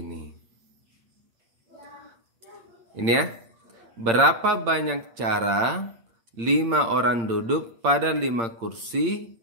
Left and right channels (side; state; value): left; late; 8.7 ms